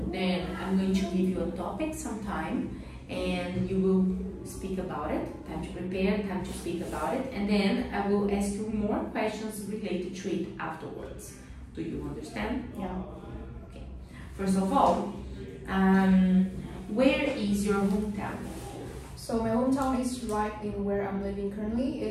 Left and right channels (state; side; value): identical; both; correlation 1.00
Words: Then I'm going to give you a topic sometime, and you will speak about it. Time to prepare, time to speak about it. And then I will ask you more questions related to it afterwards. Do you understand? Yeah. Okay. First of all, where is your hometown? So my hometown is right in where I'm living currently.